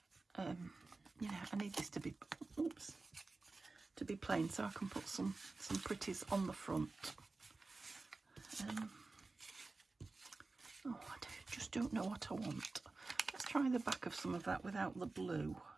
you know, I need this to be, oops, to be plain so I can put some pretties on the front. Oh, I just don't know what I want. Let's try the back of some of that without the blue.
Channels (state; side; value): quieter; left; 3.6 dB